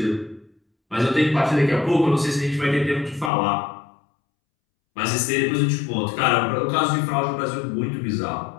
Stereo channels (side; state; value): right; drops out; at 3.3 s